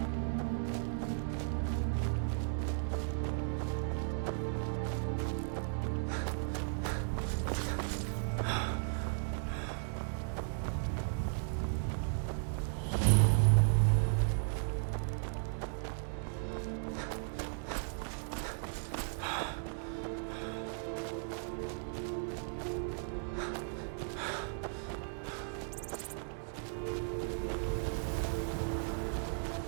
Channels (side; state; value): left; silent; digital silence